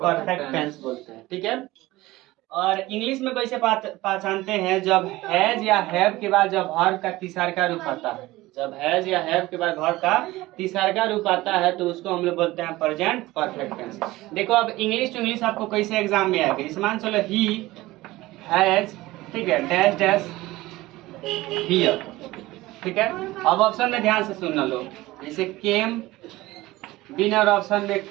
टेंस बोलते हैं। ठीक है। और इंग्लिश में कैसे पहचानते हैं? जब हैज या हैव के बाद जब वर्ब का तीसरा रूप आता है, जब हैज या हैव के बाद वर्ब का तीसरा रूप आता है तो उसको हम लोग बोलते हैं प्रेजेंट परफेक्ट टेंस। देखो अब इंग्लिश टू इंग्लिश आपको कैसे एग्जाम में आएगा। इस मान चलो ही हैज, ठीक है, डैश डैश हियर, ठीक है। अब ऑप्शन में ध्यान से सुनना लो, जैसे केम, बी नंबर ऑप्शन में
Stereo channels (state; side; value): quieter; left; 18.5 dB